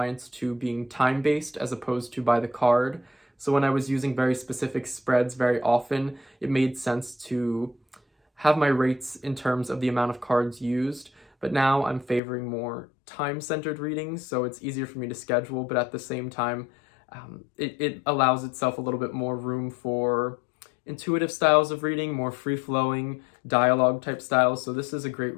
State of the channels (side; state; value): right; drops out; at 12.2 s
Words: to being time-based as opposed to by the card. So when I was using very specific spreads very often, it made sense to have my rates in terms of the amount of cards used, but now I'm favoring more time-centered readings, so it's easier for me to schedule, but at the same time, it allows itself a little bit more room for intuitive styles of reading, more free-flowing dialogue type styles. So this is a great